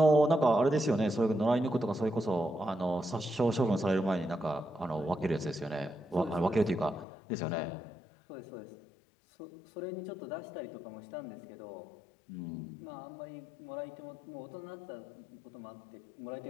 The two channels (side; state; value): right; drops out; at 7.1 s